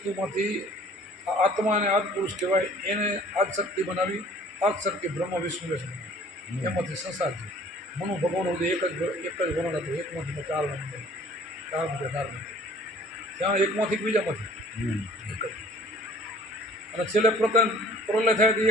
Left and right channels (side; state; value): both; normal; correlation 0.52